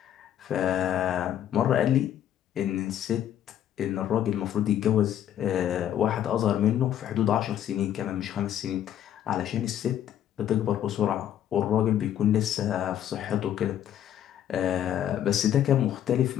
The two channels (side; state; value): right; quieter; 10.7 dB